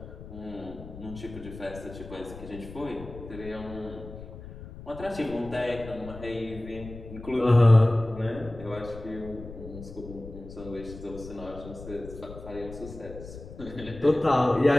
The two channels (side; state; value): left; noise; rumble, 13 dB below the sound